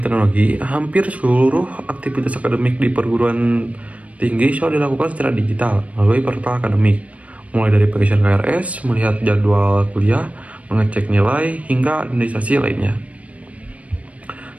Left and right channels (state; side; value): late; left; 0.066 ms